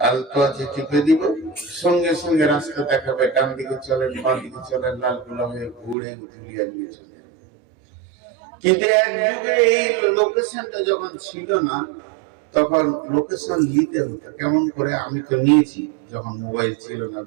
আলতো আছে টিপে দিব, সঙ্গে সঙ্গে রাস্তা দেখাবে, ডান দিকে চলেন বাঁ দিকে চলেন, লালগোলা হয়ে ঘুরে ধুলিয়ান নিয়ে চলে। কিন্তু এক যুগে এই লোকেশনটা যখন ছিল না তখন লোকেশন নিতে হতো কেমন করে। আমি তো নিয়েছি যখন মোবাইল ছিল না,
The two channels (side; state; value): left; drops out; at 6.0 s